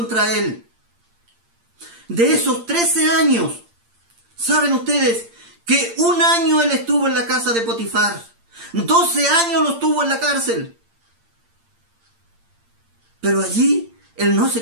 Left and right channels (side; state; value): left; late; 8.7 ms